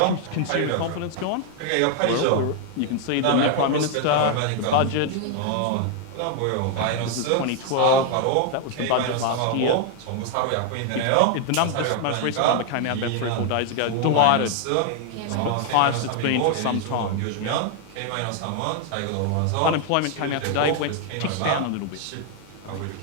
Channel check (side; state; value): both; different; correlation 0.00